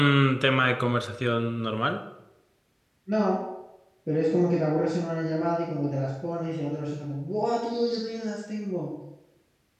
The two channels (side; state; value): both; identical; correlation 1.00